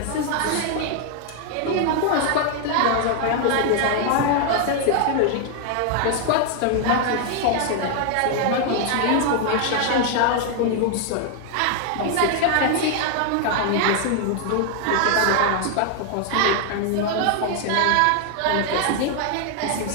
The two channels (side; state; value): both; different; correlation 0.00